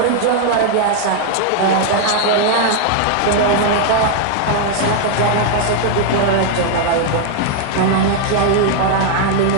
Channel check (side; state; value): both; different; correlation 0.00